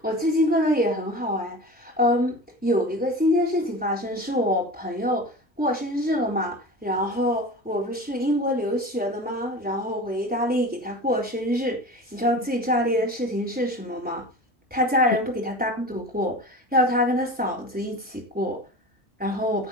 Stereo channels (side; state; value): both; normal; correlation 0.33